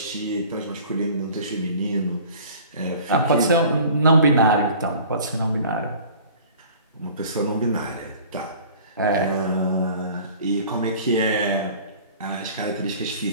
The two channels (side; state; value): both; inverted; correlation -0.46